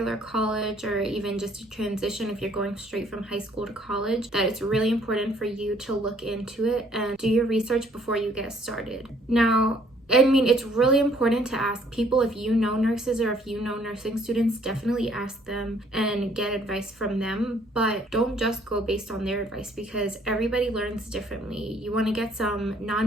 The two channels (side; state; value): both; normal; correlation 0.63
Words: college, or even just a transition if you're going straight from high school to college, that it's really important for you to look into it and do your research before you get started. Now, I mean, it's really important to ask people. If you know nurses or if you know nursing students, definitely ask them and get advice from them, but don't just go based on their advice, because everybody learns differently. You want to get some